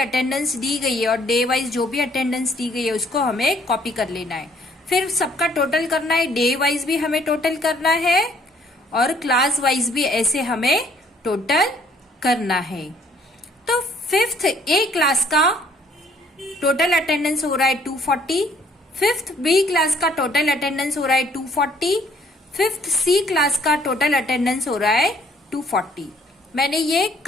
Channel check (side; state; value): both; normal; correlation 0.62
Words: दी गई है और डे वाइज जो भी अटेंडेंस दी गई है उसको हमें कॉपी कर लेना है। फिर सबका टोटल करना है, डे वाइज भी हमें टोटल करना है और क्लास वाइज भी ऐसे हमें टोटल करना है। तो 5th ए क्लास का टोटल अटेंडेंस हो रहा है 240, 5th बी क्लास का टोटल अटेंडेंस हो रहा है 240, 5th सी क्लास का टोटल अटेंडेंस हो रहा है 240। मैंने ये